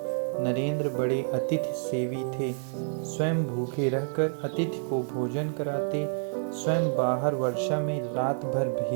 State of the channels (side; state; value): left; silent; digital silence